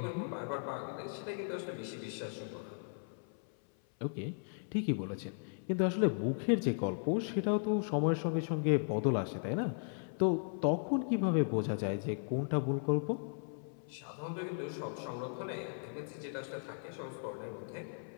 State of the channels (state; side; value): silent; right; 53 dB below the other